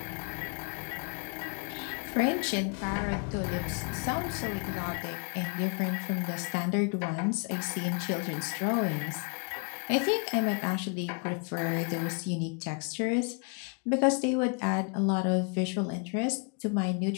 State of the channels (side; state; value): right; quieter; 36.1 dB